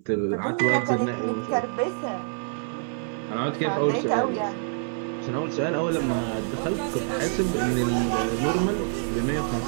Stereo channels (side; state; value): left; silent; 60 dB below the other